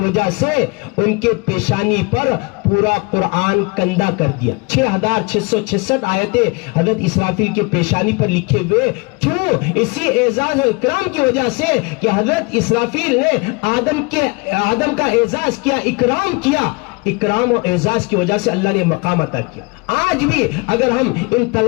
سے ان کے پیشانی پر پورا قرآن کندہ کر دیا۔ 6666 آیتیں حضرت اسرافیل کے پیشانی پر لکھے ہوئے، کیوں؟ اسی اعزاز و اکرام کی وجہ سے کہ حضرت اسرافیل نے آدم کا اعزاز کیا، اکرام کیا۔ اکرام و اعزاز کی وجہ سے اللہ نے مقام عطا کیا۔ آج بھی اگر ہم ان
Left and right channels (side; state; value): right; quieter; 28.3 dB